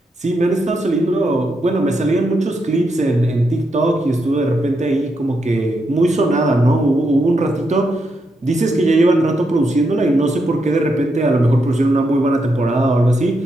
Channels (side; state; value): both; normal; correlation 0.82